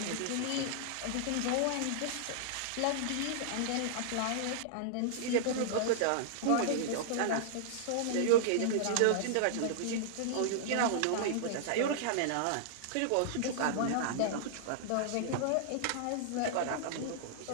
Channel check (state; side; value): different; both; correlation -0.01